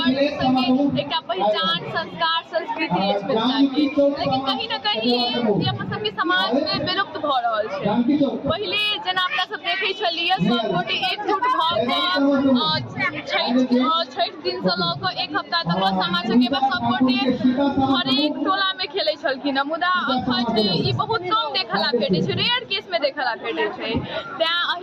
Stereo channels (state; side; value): identical; both; correlation 1.00